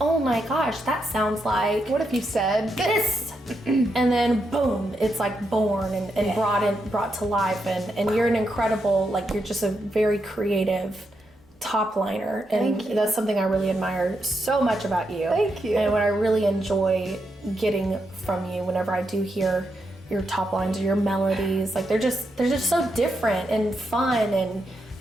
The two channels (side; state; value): both; normal; correlation 0.83